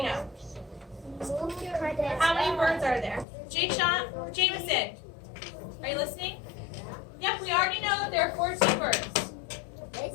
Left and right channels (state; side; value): drops out; right; at 3.2 s